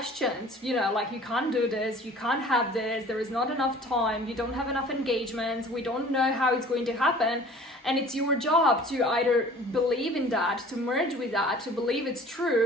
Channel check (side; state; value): both; normal; correlation 0.47